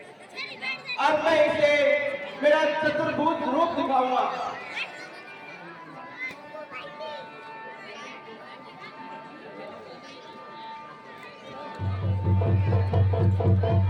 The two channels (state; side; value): identical; both; correlation 1.00